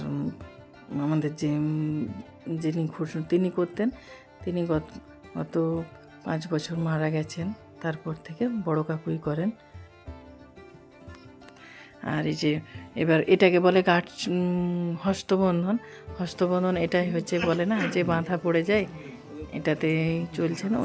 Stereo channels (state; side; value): identical; both; correlation 1.00